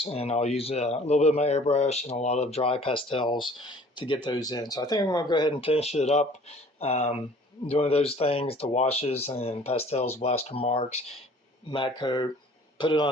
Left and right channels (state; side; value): normal; both; correlation 0.52